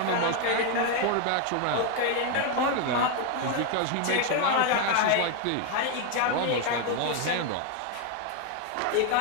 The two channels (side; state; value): both; different; correlation 0.01